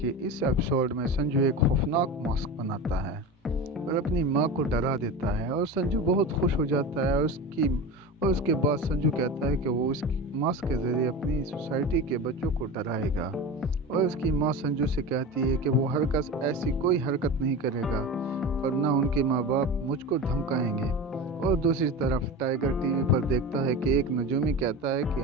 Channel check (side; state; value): both; normal; correlation 0.28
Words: इस episode में संजू एक खौफनाक मास्क बनाता है और अपनी माँ को डरा देता है और संजू बहुत खुश हो जाता है। और उसके बाद संजू कहता है कि वो इस मास्क के ज़रिए अपनी सोसाइटी के बच्चों को डराएगा। और उसकी माँ संजू से कहती है कि वो हरकत ऐसी कोई हरकत नहीं करेगा वरना उनके माँ बाप मुझको धमकाएंगे। और दूसरी तरफ टाइगर टीवी पर देखता है कि एक नजूमी कहता है कि